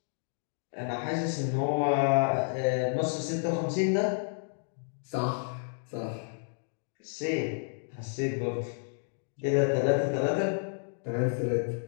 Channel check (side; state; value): right; silent; digital silence